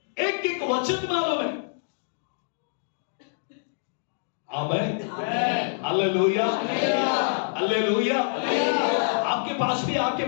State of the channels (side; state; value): right; silent; digital silence